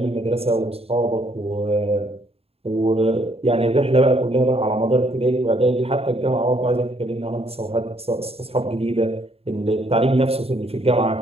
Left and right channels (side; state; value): left; late; 0.29 ms